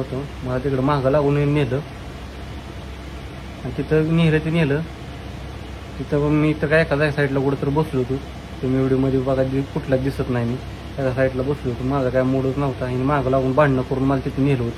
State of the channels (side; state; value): both; identical; correlation 1.00